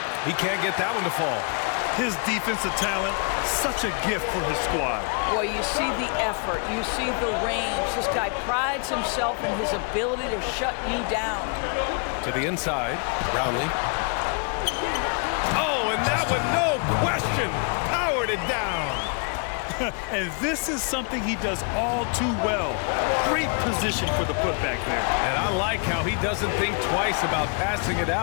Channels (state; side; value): quieter; right; 39.7 dB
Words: He can't get that one to fall. His defensive talent, such a gift for his squad. Boy, you see the effort, you see the range. This guy prides himself in his ability to shut you down. To the inside, Brownlee. Oh, and that one, no question, powered it down. And this is something he does all too well. Great position for the putback there. And I like how he doesn't think twice about passing it